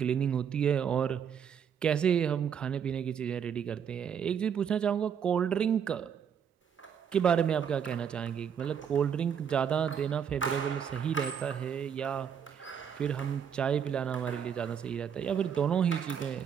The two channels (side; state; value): left; quieter; 7.8 dB